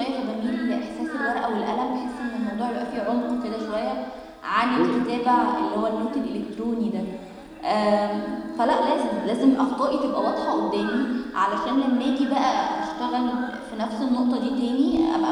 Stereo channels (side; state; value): both; identical; correlation 1.00